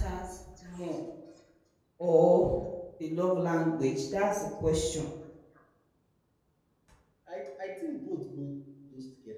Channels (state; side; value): identical; both; correlation 1.00